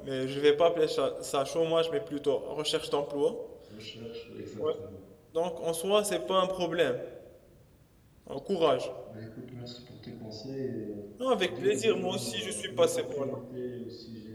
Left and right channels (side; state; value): both; identical; correlation 1.00